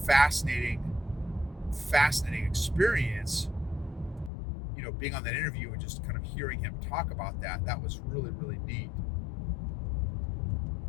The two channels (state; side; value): drops out; right; at 4.3 s